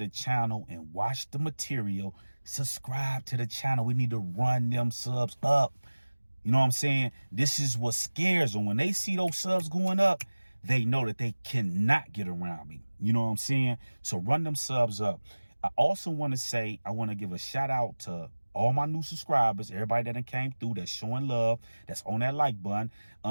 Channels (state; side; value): inverted; both; correlation -1.00